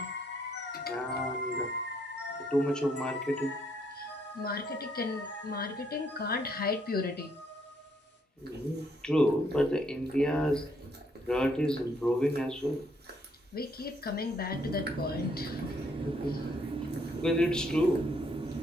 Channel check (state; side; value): normal; both; correlation 0.70